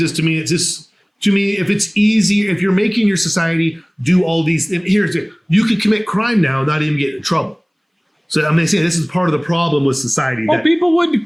To me, if it's easy, if you're making your society do all these, you could commit crime now and not even get in trouble. So I'm saying this is part of the problem with society. Well, people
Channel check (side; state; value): both; identical; correlation 1.00